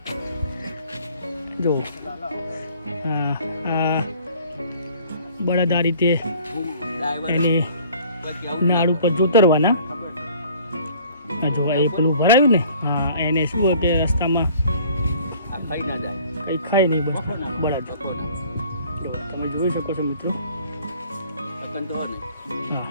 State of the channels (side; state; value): both; inverted; correlation -0.53